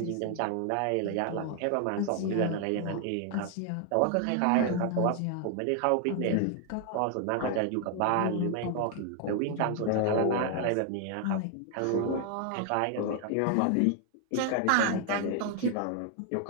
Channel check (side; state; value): both; different; correlation 0.00